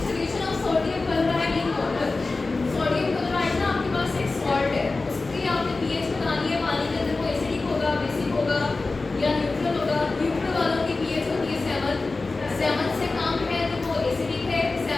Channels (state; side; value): quieter; right; 3.6 dB